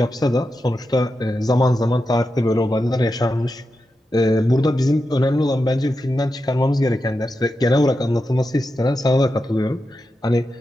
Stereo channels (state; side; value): normal; both; correlation 0.89